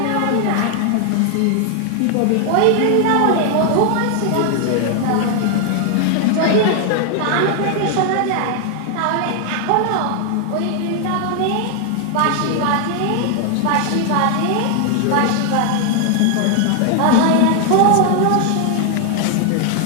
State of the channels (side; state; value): both; different; correlation 0.00